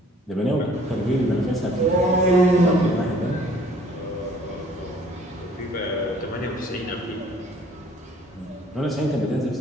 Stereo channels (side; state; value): both; normal; correlation 0.56